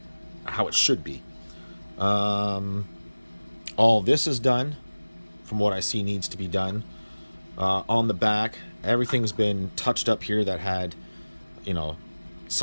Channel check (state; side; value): inverted; both; correlation -1.00